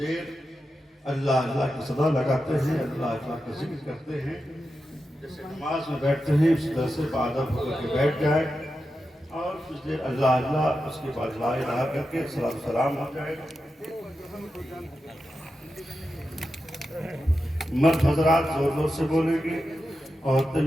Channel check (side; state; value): both; normal; correlation 0.90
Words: اللہ اللہ کی صدا لگاتے ہیں اللہ اللہ کا ذکر کرتے ہیں جیسے نماز میں بیٹھتے ہیں اس طرح سے بادب ہو کے بیٹھ جائے اور کچھ دیر اللہ اللہ اس کے بعد لا الہ کر کے سلام ہو جائے مرد حضرات زور زور سے بولیں گے عورتیں